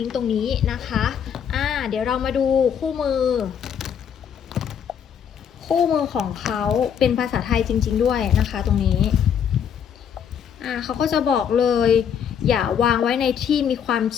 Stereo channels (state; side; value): quieter; right; 8.1 dB